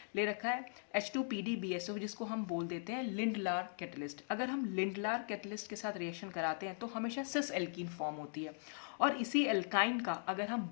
ले रखा है H2PDBSO जिसको हम बोल देते हैं लिंडलार कैटलिस्ट। अगर हम लिंडलार कैटलिस्ट के साथ रिएक्शन कराते हैं तो हमेशा सिस एल्कीन फॉर्म होती है, और इसी एल्काइन का अगर हम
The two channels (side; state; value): right; silent; digital silence